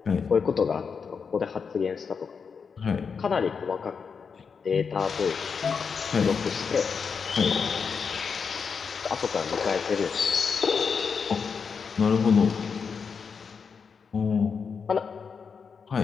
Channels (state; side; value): quieter; right; 5.9 dB